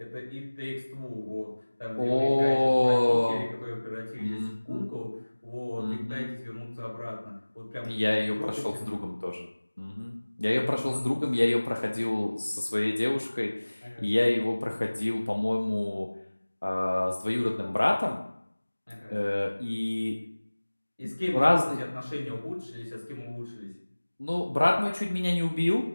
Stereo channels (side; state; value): both; inverted; correlation -1.00